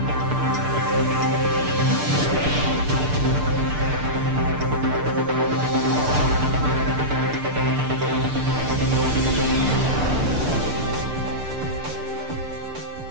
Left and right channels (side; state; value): left; late; 6.8 ms